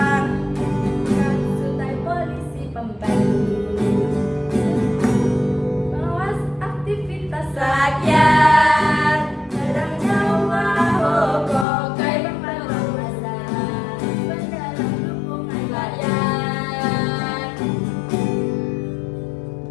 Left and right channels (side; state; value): right; drops out; at 11.7 s